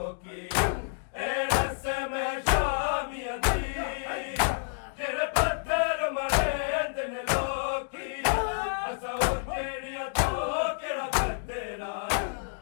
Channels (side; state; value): right; silent; digital silence